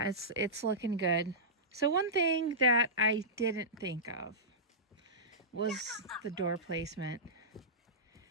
it's looking good. So one thing that I didn't think of was the door placement.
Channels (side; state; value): both; normal; correlation -0.16